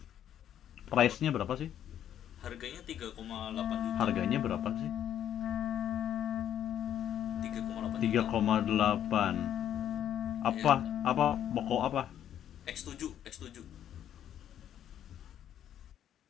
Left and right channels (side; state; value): right; quieter; 10.4 dB